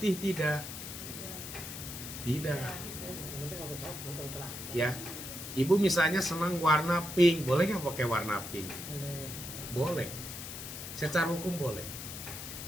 tidak? Tidak. Ya. Ibu misalnya senang warna pink, boleh nggak pakai warna pink? Boleh. Secara hukum boleh.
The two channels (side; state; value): left; noise; hiss, 9 dB below the sound